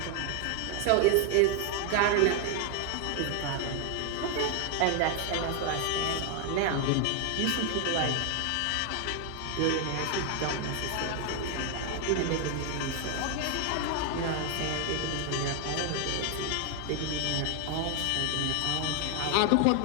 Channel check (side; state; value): both; different; correlation 0.01